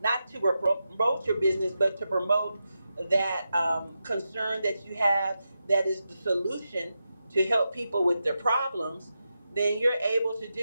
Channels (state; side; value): inverted; both; correlation -0.89